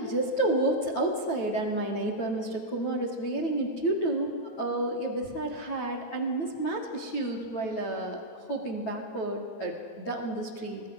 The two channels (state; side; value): late; right; 9.1 ms